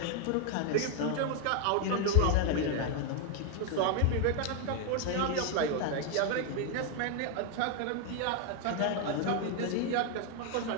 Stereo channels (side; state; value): both; different; correlation 0.01